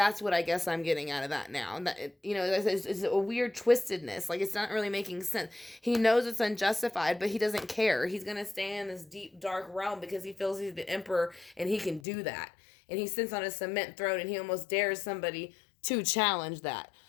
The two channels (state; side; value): drops out; right; at 12.0 s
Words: what I guess I'm getting out of that now. That it's a weird twistedness. Like, it's not really making sense. He knows it's unjustified, but he doesn't care. He's gonna stay in this deep dark realm because he feels he's the emperor and he can do that. And he sits on a cement throne and he almost dares somebody to challenge that.